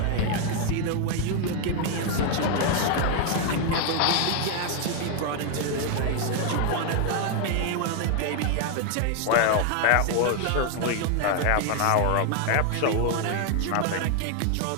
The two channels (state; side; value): different; both; correlation 0.00